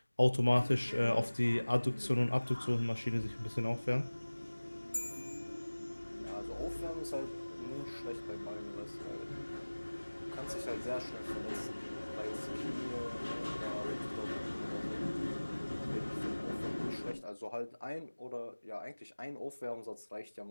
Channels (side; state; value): both; inverted; correlation -1.00